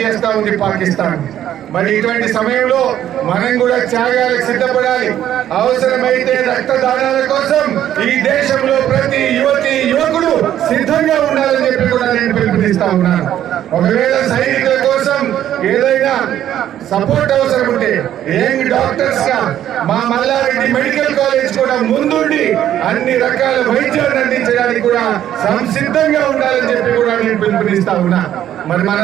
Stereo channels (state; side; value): quieter; left; 11.3 dB